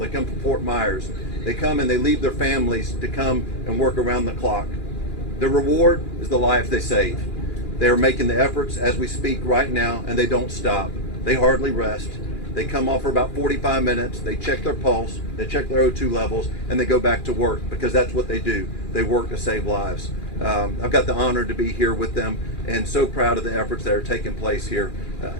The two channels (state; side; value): late; right; 2.4 ms